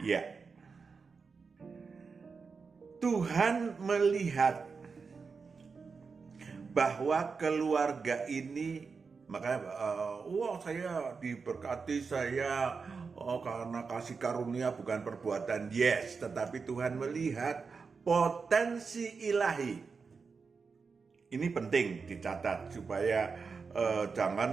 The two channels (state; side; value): quieter; left; 5.0 dB